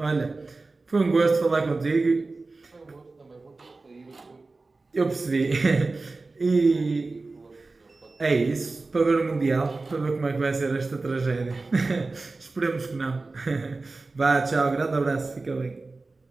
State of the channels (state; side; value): quieter; left; 3.6 dB